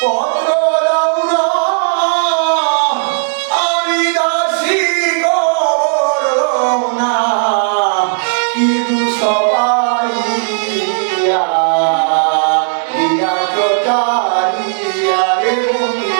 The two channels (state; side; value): silent; left; digital silence